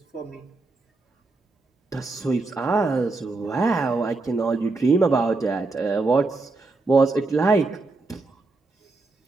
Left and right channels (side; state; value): left; quieter; 3.5 dB